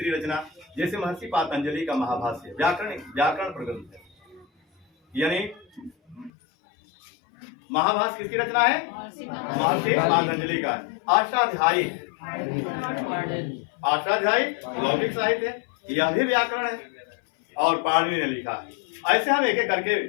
रचना, जैसे महर्षि पातंजलि का महाभाष्य व्याकरण प्रग्रंथ है, यानी महाभाष्य किसकी रचना है? महर्षि पातंजलि का। अष्टाध्यायी लौकिक साहित्य है, यह भी व्याकरण है और पाणिनि ने लिखा है। ऐसे हम एक एक करके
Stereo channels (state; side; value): drops out; right; at 6.3 s